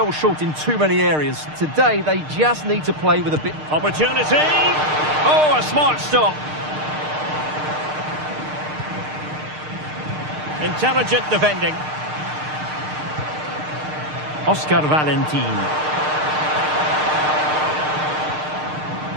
short in too many areas. Today, they just need to play with a bit... Opportunity! Oh, a smart stop. Intelligent defending. Oscar Valentín.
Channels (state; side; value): late; left; 6.6 ms